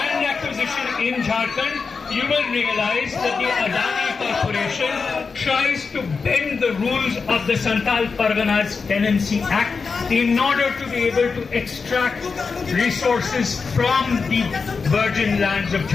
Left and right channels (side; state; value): right; quieter; 4.9 dB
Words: acquisition in Jharkhand, you will realize that the Adani Corporation tries to bend the rules of the Santhal Parganas Tenancy Act in order to be able to extract resources from the virgin lands of